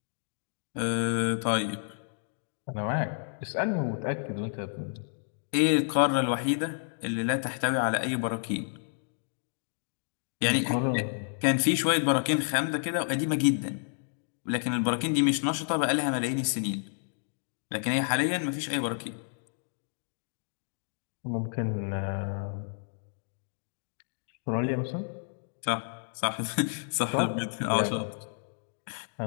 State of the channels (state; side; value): silent; right; digital silence